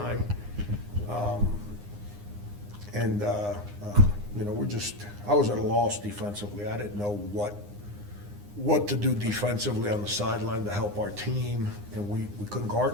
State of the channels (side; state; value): left; late; 9.7 ms